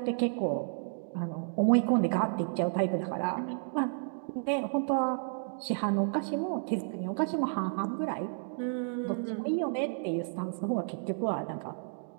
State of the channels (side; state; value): left; silent; digital silence